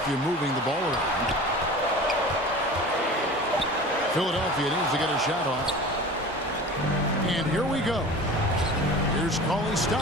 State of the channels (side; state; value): both; normal; correlation 0.38